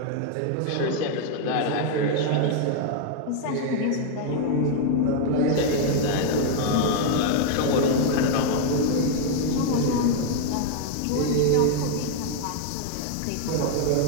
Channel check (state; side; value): different; both; correlation 0.00